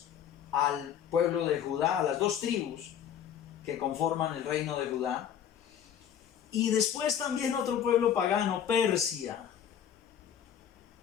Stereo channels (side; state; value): right; quieter; 9.2 dB